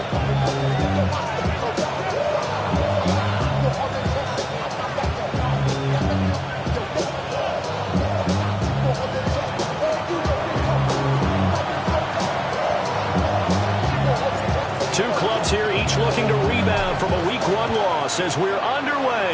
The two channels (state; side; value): identical; both; correlation 1.00